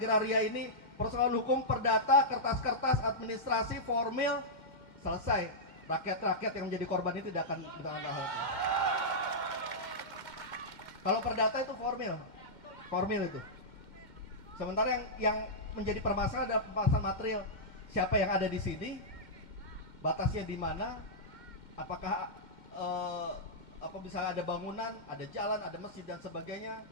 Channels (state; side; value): late; left; 2.1 ms